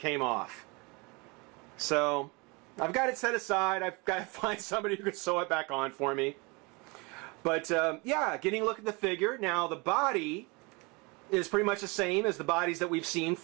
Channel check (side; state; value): left; quieter; 27.9 dB